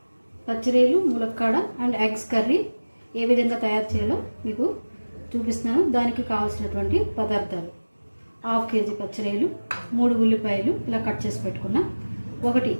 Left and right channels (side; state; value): both; inverted; correlation -1.00